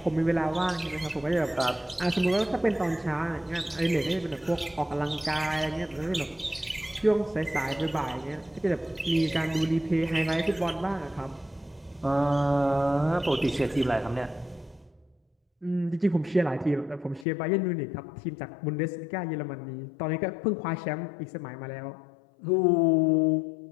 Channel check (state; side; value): drops out; right; at 17.2 s